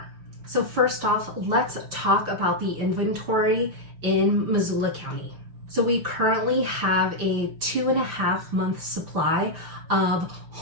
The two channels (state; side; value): late; left; 6.0 ms